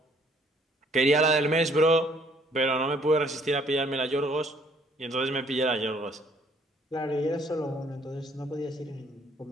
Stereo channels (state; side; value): normal; both; correlation 0.62